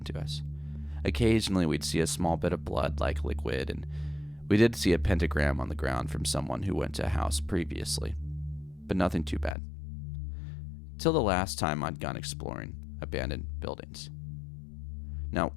to us. Occasionally we'd see a small bit of blood-like liquid, and we did see a pentagram on the ground from someone who went to a house previously, but nothing too bad. Till the last time I'd gone exploring abandoned buildings. Now,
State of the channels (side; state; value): right; drops out; at 9.6 s